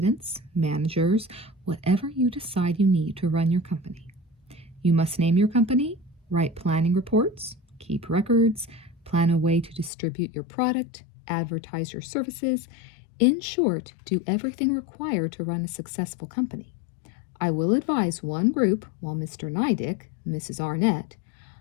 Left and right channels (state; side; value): drops out; right; at 9.9 s